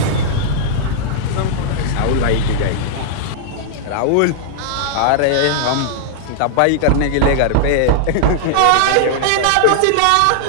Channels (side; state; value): both; different; correlation -0.01